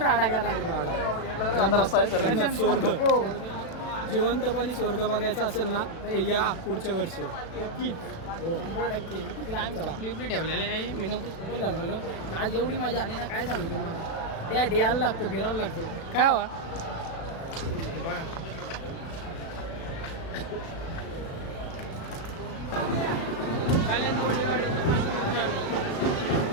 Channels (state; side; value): late; right; 36 ms